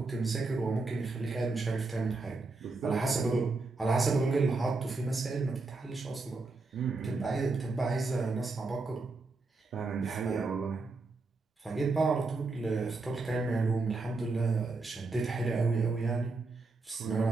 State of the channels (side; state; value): left; quieter; 3.7 dB